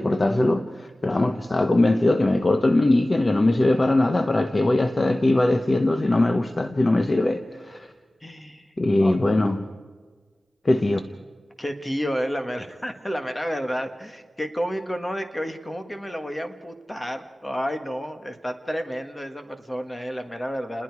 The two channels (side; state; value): both; normal; correlation 0.97